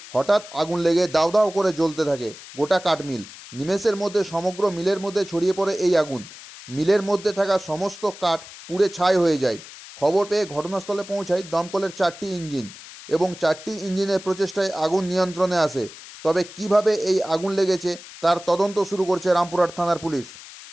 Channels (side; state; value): left; noise; hiss, 16 dB below the sound